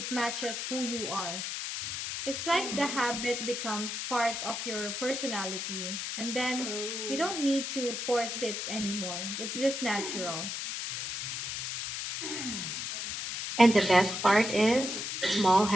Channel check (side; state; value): left; noise; hiss, 4 dB below the sound